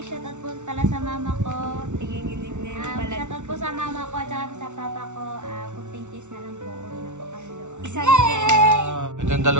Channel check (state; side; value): late; left; 0.84 ms